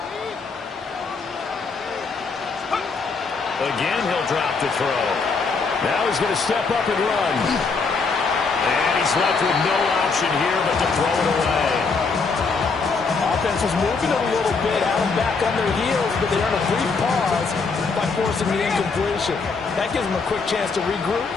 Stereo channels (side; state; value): right; quieter; 4.6 dB